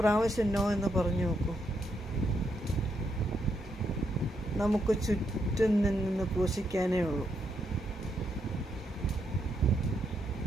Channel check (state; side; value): normal; both; correlation 0.79